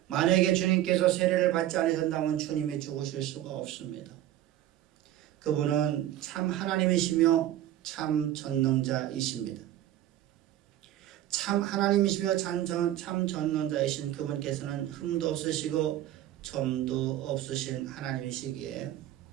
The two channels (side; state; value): left; quieter; 13.1 dB